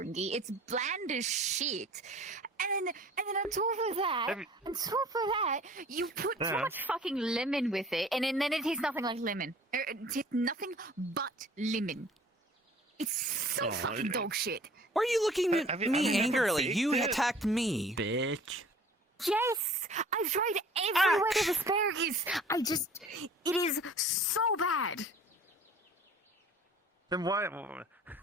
It's bland as shit. And then on top of that, you put so much fucking lemon with it, and then it tastes nothing like lemon. It tastes nothing but lemon. It's so fucking dog shit. Why are you looking at me angrily? baked You it. attacked me. Bitch. Yes, I've tried every way of asparagus. It is so bad. Then why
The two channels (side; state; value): both; normal; correlation 0.49